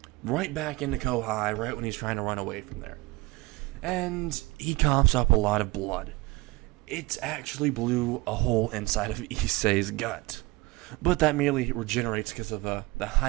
right back into Kohai right when he's trying to run away from there. And he coughs up a lot of blood. It actually blew a hole inside of Issei's gut. But that merely regenerates because of the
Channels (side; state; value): left; quieter; 21.5 dB